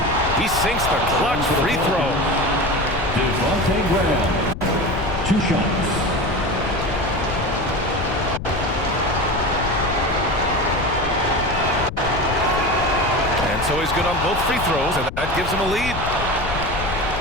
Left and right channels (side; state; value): left; noise; rumble, 7 dB below the sound